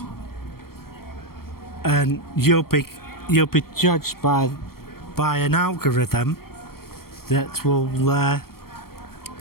and you'll be judged by an algorithm that will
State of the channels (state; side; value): late; right; 0.94 ms